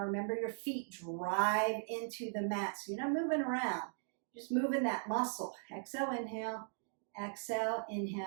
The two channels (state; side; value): silent; left; digital silence